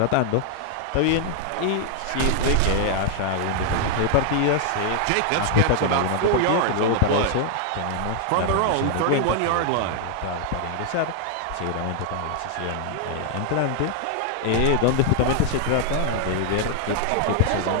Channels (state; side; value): different; both; correlation 0.00